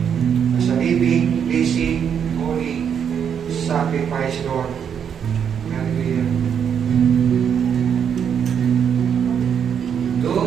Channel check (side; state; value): left; quieter; 7.9 dB